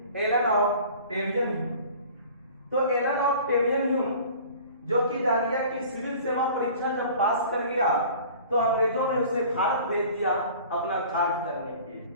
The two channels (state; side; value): inverted; both; correlation -0.45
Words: एलन ऑफ टेरियन। तो एलन ऑफ टेरियन जो कि जानिए कि सिविल सेवा परीक्षा जब पास कर गया तो अंग्रेजों ने उसे भारत भेज दिया अपना कार्य करने के लिए।